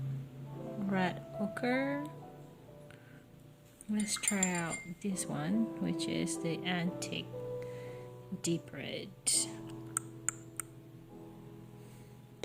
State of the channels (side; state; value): both; identical; correlation 1.00